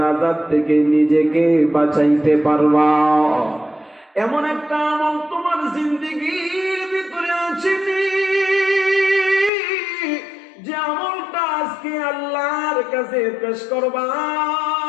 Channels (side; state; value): right; drops out; at 9.5 s